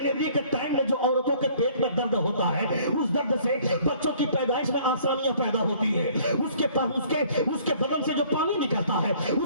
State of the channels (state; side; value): inverted; both; correlation -0.56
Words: کے ٹائم میں جو عورتوں کے پیٹ میں درد ہوتا ہے, اس درد سے بچوں کی پیدائش میں آسانیاں پیدا ہوتی ہے. اس کے بدن سے جو پانی نکلتا ہے